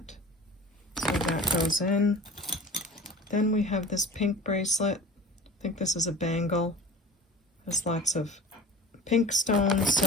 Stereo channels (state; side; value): normal; both; correlation 0.39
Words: So that goes in. Then we have this pink bracelet. I think this is a bangle. There's lots of pink stones,